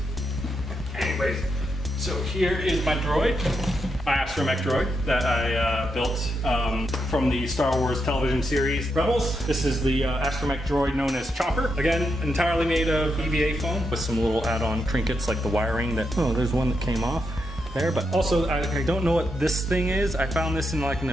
Anyways, so here is my droid, my astromech droid that I built from the Star Wars television series Rebels. This is the astromech droid known as Chopper. Again, entirely made of EVA foam with some little add-on trinkets like the wiring that, oh, there's one that came off there, but also I don't know what this thing is. I found this in like an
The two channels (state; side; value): normal; both; correlation 0.83